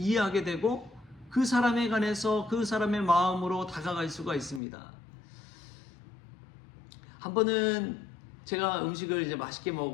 되고 그 사람에 관해서 그 사람의 마음으로 다가갈 수가 있습니다. 한 번은 제가 음식을 이제 맛있게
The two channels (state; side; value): drops out; right; at 4.6 s